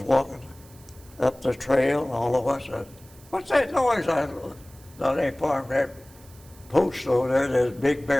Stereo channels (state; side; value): noise; right; hiss, 25 dB below the sound